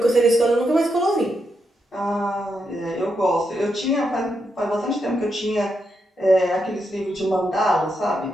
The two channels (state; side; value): normal; both; correlation 0.83